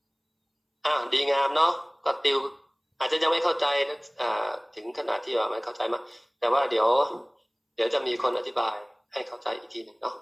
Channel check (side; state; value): both; identical; correlation 1.00